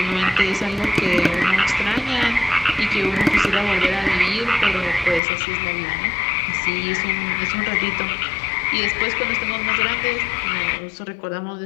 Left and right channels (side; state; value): right; drops out; at 5.2 s